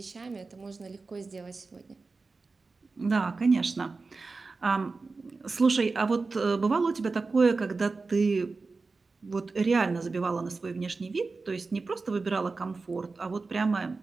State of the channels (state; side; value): quieter; left; 4.0 dB